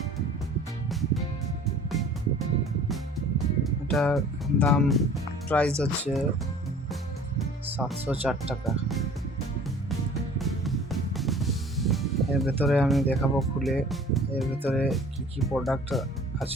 এটার দাম প্রাইস হচ্ছে 704 টাকা। এর ভেতরে আমি দেখাবো খুলে এর ভেতরে কি কি প্রোডাক্ট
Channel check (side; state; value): both; normal; correlation 0.48